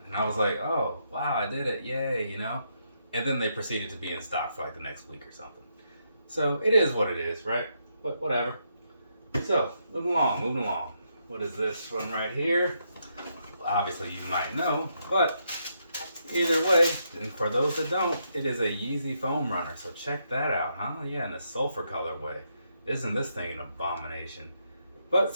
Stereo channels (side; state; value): both; inverted; correlation -0.79